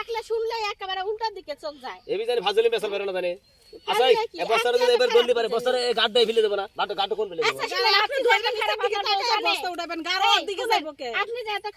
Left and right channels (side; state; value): both; identical; correlation 1.00